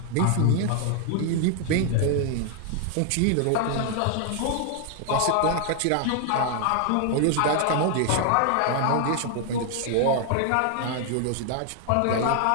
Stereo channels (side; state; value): both; different; correlation 0.00